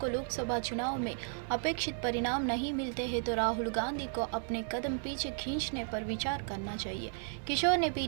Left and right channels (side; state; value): left; silent; 55 dB below the other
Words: लोकसभा चुनाव में अपेक्षित परिणाम नहीं मिलते हैं तो राहुल गांधी को अपने कदम पीछे खींचने पर विचार करना चाहिए। किशोर ने